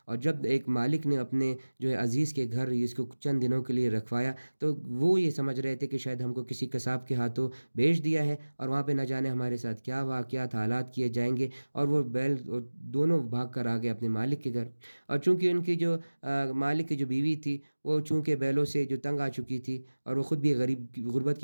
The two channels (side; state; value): both; inverted; correlation -1.00